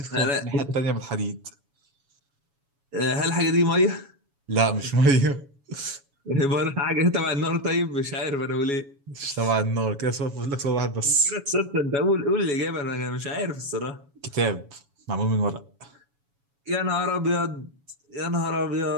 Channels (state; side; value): late; left; 7.1 ms